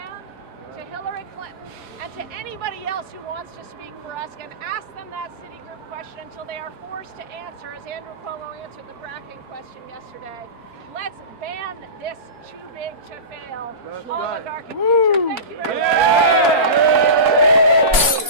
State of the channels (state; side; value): late; left; 3.5 ms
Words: to Hillary Clinton, and to anybody else who wants to speak for us, and ask them that Citigroup question until they are forced to answer, as Andrew Cuomo answered the fracking question yesterday. Let's ban this too big to fail oligarchic future. Thank you very much.